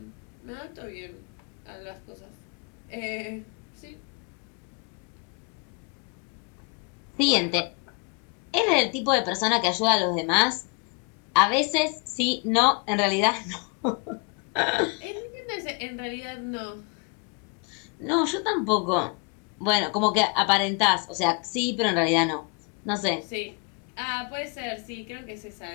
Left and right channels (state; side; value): quieter; right; 34.1 dB